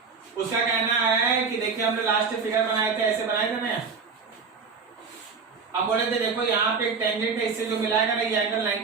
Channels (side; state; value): left; quieter; 5.1 dB